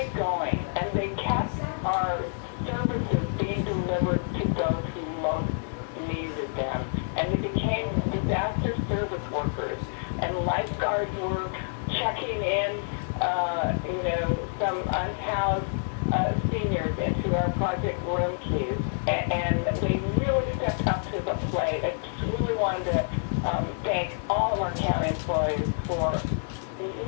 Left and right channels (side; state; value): right; silent; digital silence